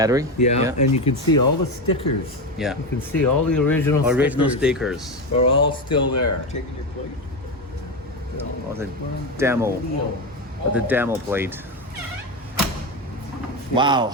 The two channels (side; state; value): both; normal; correlation 0.16